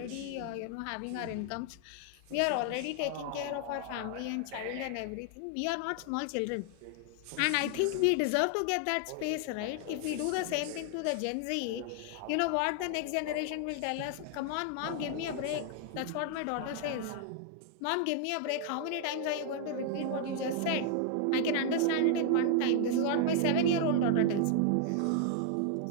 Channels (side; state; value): both; different; correlation 0.00